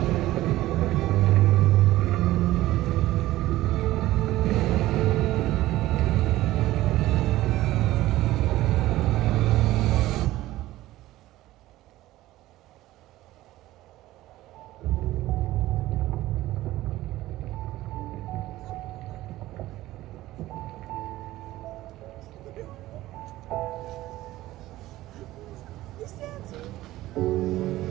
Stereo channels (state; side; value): quieter; left; 16.2 dB